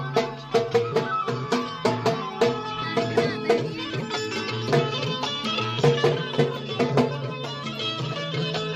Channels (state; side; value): identical; both; correlation 1.00